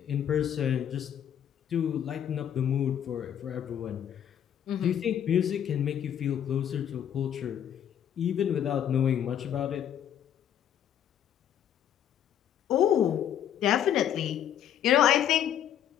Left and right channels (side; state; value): right; quieter; 9.8 dB